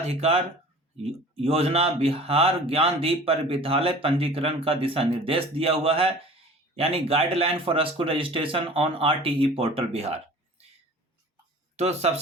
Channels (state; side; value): normal; both; correlation 0.43